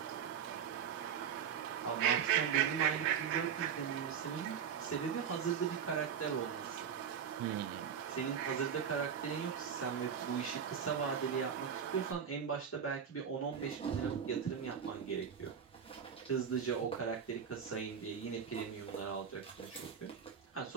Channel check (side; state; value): left; quieter; 7.6 dB